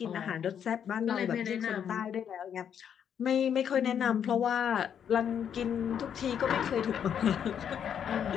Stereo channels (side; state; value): right; quieter; 8.5 dB